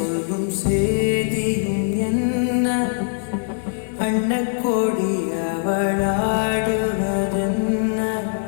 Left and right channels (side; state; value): right; silent; digital silence